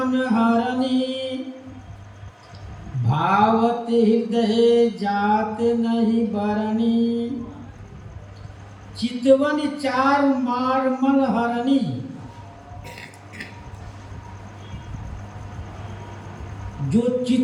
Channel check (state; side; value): identical; both; correlation 1.00